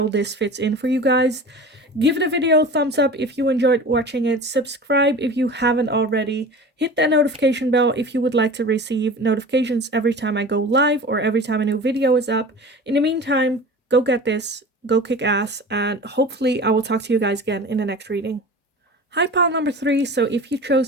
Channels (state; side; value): normal; both; correlation 0.36